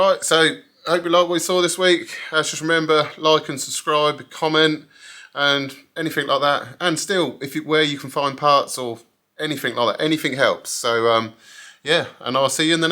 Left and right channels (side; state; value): both; identical; correlation 1.00